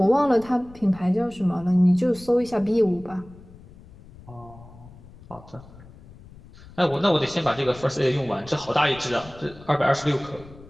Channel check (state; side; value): noise; left; rumble, 21 dB below the sound